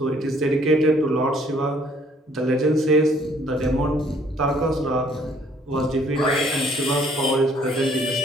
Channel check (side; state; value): both; normal; correlation 0.62